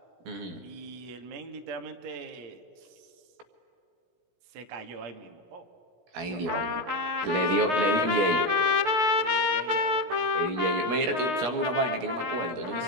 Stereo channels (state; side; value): late; left; 17 ms